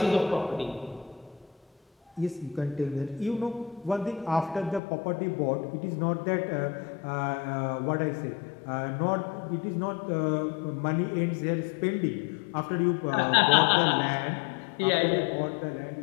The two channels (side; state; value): right; drops out; at 4.8 s